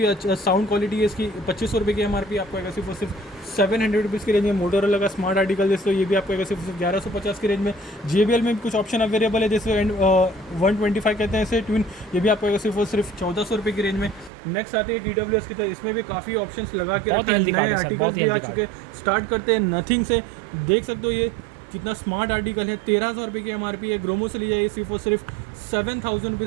अच्छा साउंड क्वालिटी है इसकी, 2500 रुपये की MRP आपको अगर सिर्फ 700 रुपीज़ की रेंज में। मोटोरोला का स्मार्ट आर्टिकल जैसे तो ये भी आपको सिर्फ 1150 की रेंज में। JBL में कुछ ऑप्शन अवेलेबल है जैसे 125 कहते हैं इसे ट्विन, ये भी आपको सिर्फ 1400 रुपये की रेंज में। नेक्स्ट आते हैं TWS की तरह, इसमें भी काफ़ी ऑप्शंस लगा के रखा है, नए आर्टिकल भी आ चुके। स्टार्ट करते हैं नथिंग से, देख सकते हो ये कितना स्मार्ट आर्टिकल है, 13,000 रुपये की MRP है। ग्रोमो से लिया सिर्फ और सिर्फ 7000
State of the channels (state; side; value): drops out; left; at 14.3 s